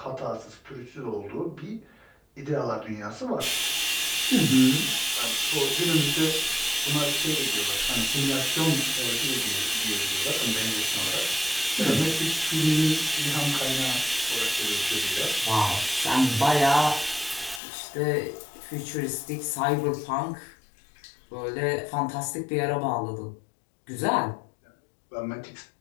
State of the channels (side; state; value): right; drops out; at 17.6 s